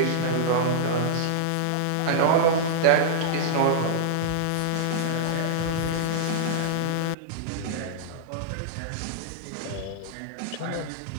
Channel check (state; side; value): different; both; correlation -0.02